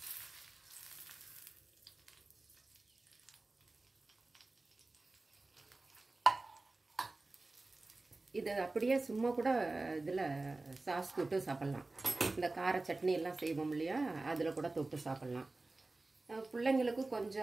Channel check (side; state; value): left; quieter; 3.2 dB